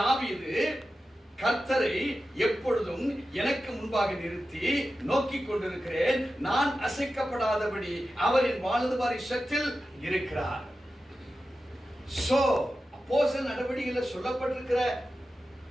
கர்த்தரை எப்பொழுதும் எனக்கு முன்பாக நிறுத்தி நோக்கிக் கொண்டிருக்கிறேன், நான் அசைக்கப்படாதபடி அவரின் வலது பாரிசத்தில் இருக்கிறார். சோ அப்போஸ்தலர் நடவடிக்கையில் சொல்லப்பட்டிருக்கிற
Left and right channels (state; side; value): normal; both; correlation 0.92